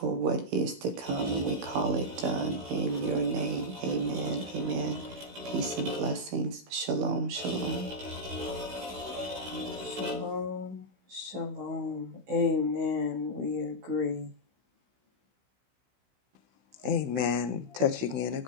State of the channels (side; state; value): left; late; 16 ms